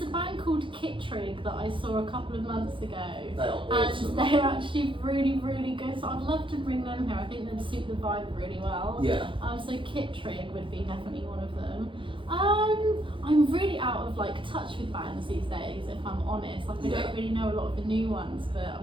a band called Kittrig that I saw a couple of months ago. They are awesome. And they're actually really, really good. So I'd love to bring them here. I think they'd suit the vibe really well. Yeah. So Kittrig would be definitely one of them. I'm really out of touch with bands these days, if I'm honest. I don't really know a lot of the new ones, but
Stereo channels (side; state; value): left; late; 0.25 ms